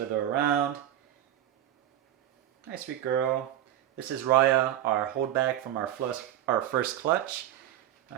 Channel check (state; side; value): quieter; left; 12.2 dB